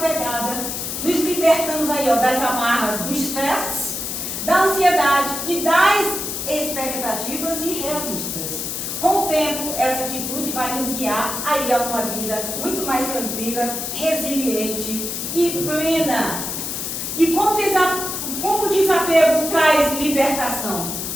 nos libertamos aí, das amarras do estresse, da ansiedade e das expectativas irrealistas. Com o tempo, essa atitude vai nos guiar aí a uma vida muito mais tranquila, resiliente e plena. E como o desapego traz libertação?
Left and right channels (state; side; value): noise; left; hiss, 4 dB below the sound